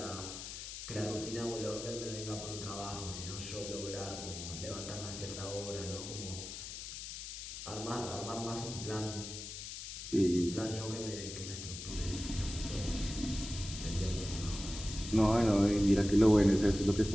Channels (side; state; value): left; noise; hiss, 9 dB below the sound